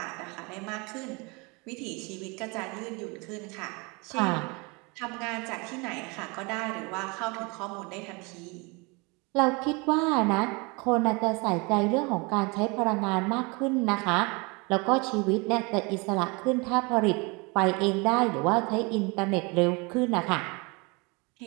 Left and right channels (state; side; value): quieter; left; 28.5 dB